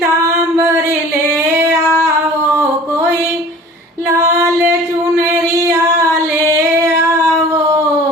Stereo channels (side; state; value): both; normal; correlation 0.45